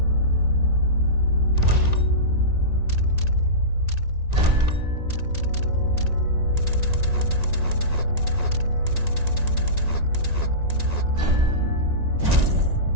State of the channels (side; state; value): left; late; 1.9 ms